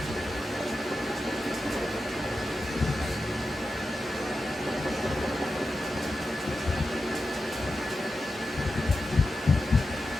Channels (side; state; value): both; normal; correlation 0.91